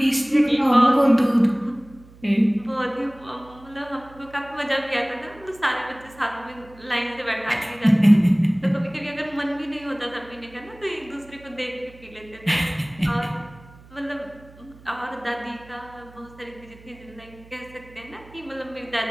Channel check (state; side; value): noise; right; hum, 22 dB below the sound